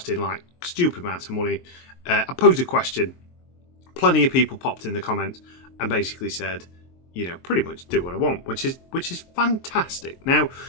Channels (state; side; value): late; right; 23 ms